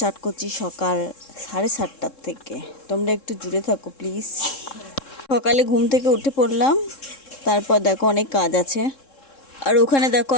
করছি সকাল 7:30টার থেকে। তোমরা একটু জুড়ে থাকো প্লিজ। সকালে ঘুম থেকে উঠে পড়লাম, তারপর দেখো অনেক কাজ আছে। আর ওখানে দেখো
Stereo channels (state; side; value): late; right; 3.7 ms